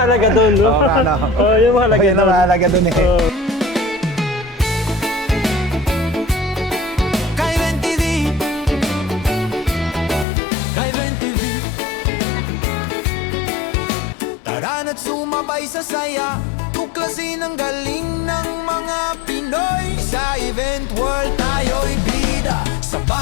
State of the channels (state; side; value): drops out; right; at 10.2 s